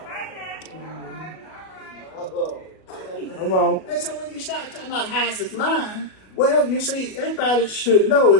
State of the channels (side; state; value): right; late; 37 ms